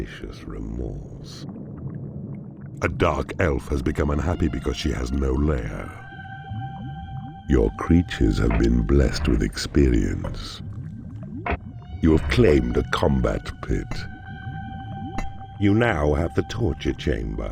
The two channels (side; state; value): both; identical; correlation 1.00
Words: remorse. A dark elf has become unhappy because she has no lair. Your creatures have been blessed with experience. You have claimed a combat pit. You now have the torture